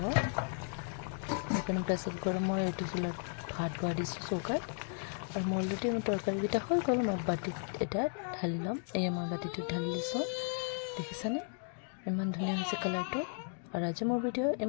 সেইকাৰণে প্ৰেছাৰ কুকাৰত মই এইটো চুলাত ভাত বহাই দিছোঁ চৌকাত আৰু মোৰ অলৰেডি মোৰ তৰকাৰীকেইটা হৈ গ'ল মই বাতিত এটা ঢালি ল'ম এয়া মই বাতিটোত ঢালি লৈছোঁ দেখিছেনে ইমান ধুনীয়া হৈছে কালাৰটো আৰু আজি মোৰ ভিডিঅ'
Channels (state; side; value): silent; right; 54 dB below the other